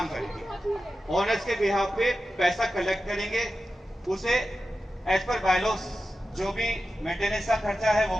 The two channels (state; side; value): normal; both; correlation 0.92